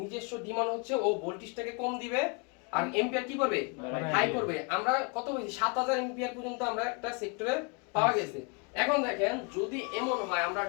ডিমান্ড হচ্ছে ও ভোল্টেজটাকে কম দিবে আর এম্পিয়ার কি করবে হাই করবে। আমরা কত বলছি 7000 এম্পিয়ার পর্যন্ত আমরা একটা সেক্টরে পাওয়া গেছে। এখন দেখেন যদি এমন হয় আমরা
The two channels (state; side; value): quieter; right; 33.7 dB